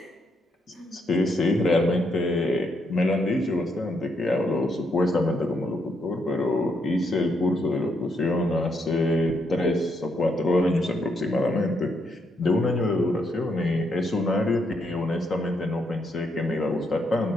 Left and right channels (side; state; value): both; normal; correlation 0.77